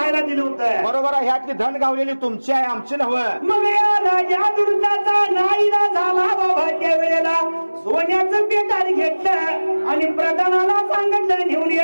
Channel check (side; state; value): both; inverted; correlation -1.00